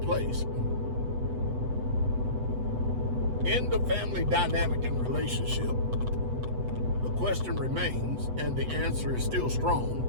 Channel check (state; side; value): late; left; 8.0 ms